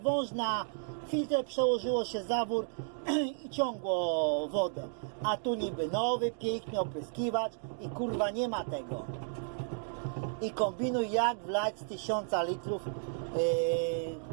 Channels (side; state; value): left; silent; digital silence